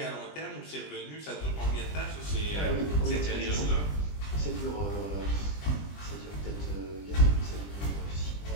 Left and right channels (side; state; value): right; late; 20 ms